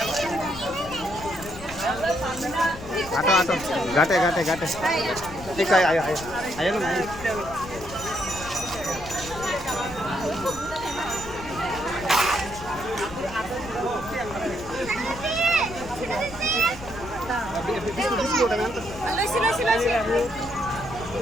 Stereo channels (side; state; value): left; noise; rumble, 14 dB below the sound